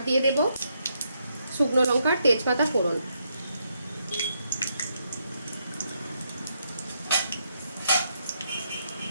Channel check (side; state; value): both; inverted; correlation -0.78